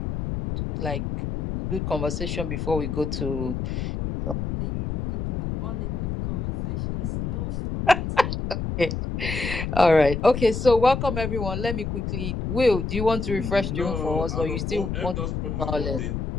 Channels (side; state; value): left; noise; rumble, 3 dB below the sound